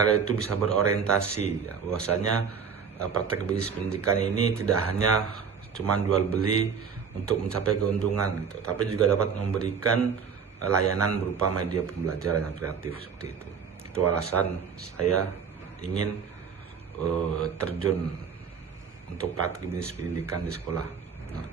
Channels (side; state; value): left; quieter; 6.3 dB